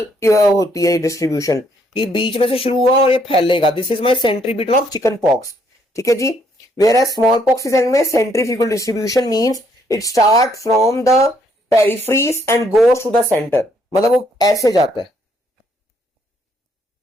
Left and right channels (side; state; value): both; normal; correlation 0.69